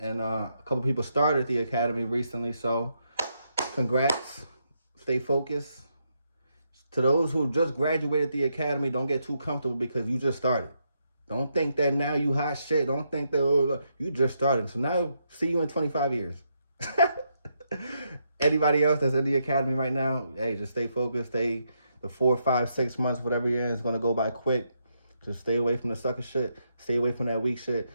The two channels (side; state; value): both; inverted; correlation -0.80